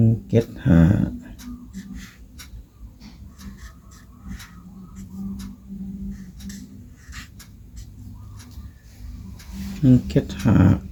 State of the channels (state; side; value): identical; both; correlation 1.00